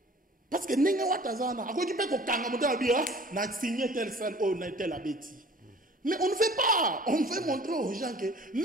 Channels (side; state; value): both; normal; correlation 0.49